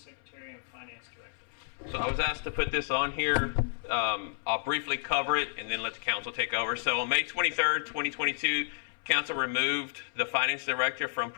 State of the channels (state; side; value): silent; right; 56 dB below the other